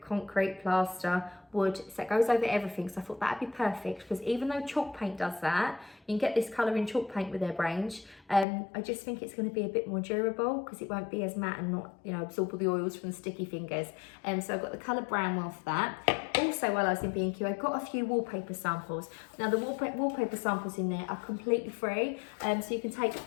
concrete, plaster, wood. So it goes over everything. So I thought that'd be perfect, because even though chalk paint does that, you can get this colour in chalk paint with their range. I just think it's going to be a bit more durable because it won't be as matte and not, you know, absorb all the oils from the sticky fingers. So I've got the colour Brownwell for that. Also, while I was in B&Q, I got a few wallpaper samples. Now, the wallpaper samples in there are completely free, so you can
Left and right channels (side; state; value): right; drops out; at 8.5 s